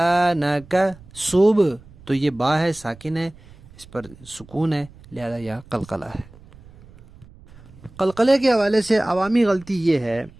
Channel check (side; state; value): right; noise; rumble, 23 dB below the sound